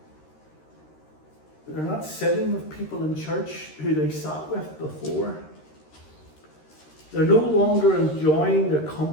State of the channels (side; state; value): right; late; 13 ms